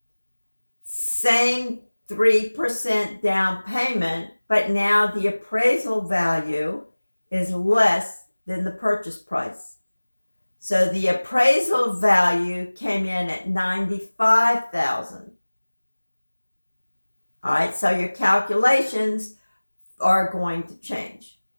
same 3% down payment, but now the appraisal value is less than the purchase price. So the appraisal value came in at $95,000. All right, so your calculations are going to change.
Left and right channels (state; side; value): inverted; both; correlation -1.00